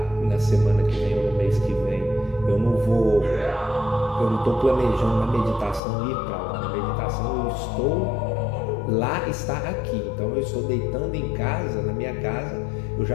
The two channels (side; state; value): right; drops out; at 5.8 s